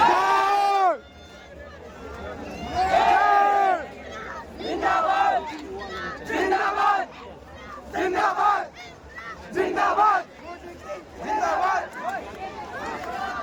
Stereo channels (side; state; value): both; identical; correlation 1.00